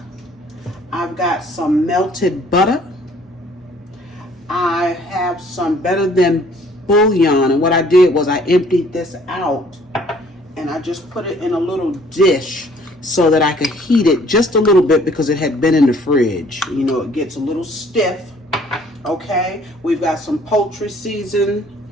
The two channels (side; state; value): both; normal; correlation 0.58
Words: I've got some melted butter, have some Better Than bouillon, and what I did was I emptied this out and I just put it in a little dish so that I could heat it just a little bit because it had been in the fridge. You know, it gets a little stiff. Okay, we've got some poultry